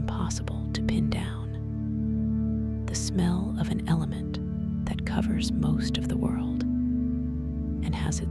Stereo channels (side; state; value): left; noise; hum, 24 dB below the sound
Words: to pin down. The smell of an element that covers most of the world and has